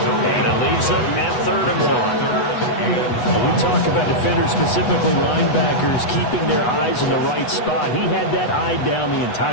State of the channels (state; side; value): late; right; 8.1 ms